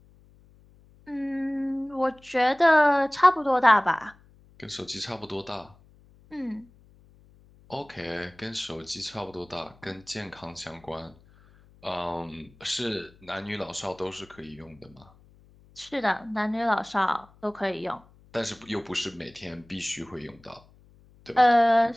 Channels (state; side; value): noise; left; hum, 27 dB below the sound